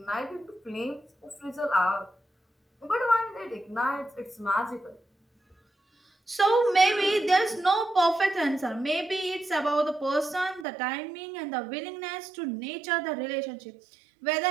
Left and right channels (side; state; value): left; drops out; at 10.7 s